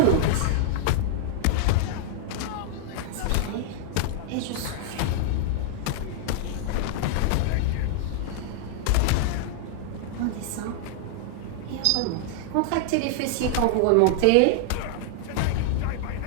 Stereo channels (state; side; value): different; both; correlation -0.01